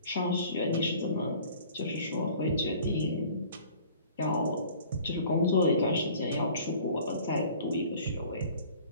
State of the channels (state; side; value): inverted; both; correlation -0.49